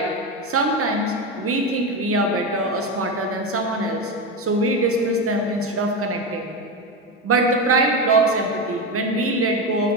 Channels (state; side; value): normal; both; correlation 0.16